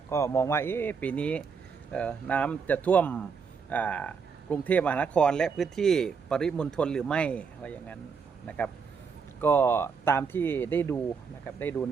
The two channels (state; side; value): quieter; left; 5.8 dB